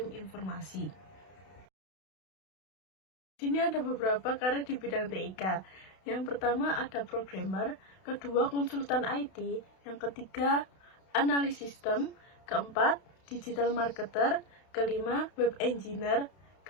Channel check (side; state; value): right; late; 32 ms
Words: informasi. Di sini ada beberapa karir di bidang TIK. Yang pertama ada programmer, kedua konsultan IT, yang ketiga analis sistem, keempat digital marketer, kelima web engineer,